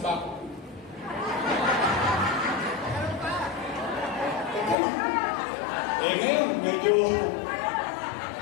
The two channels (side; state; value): right; drops out; at 4.8 s